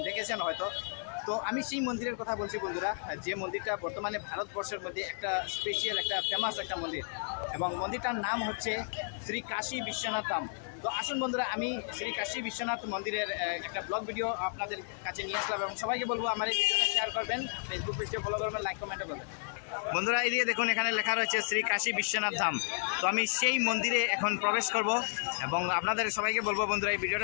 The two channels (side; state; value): right; silent; digital silence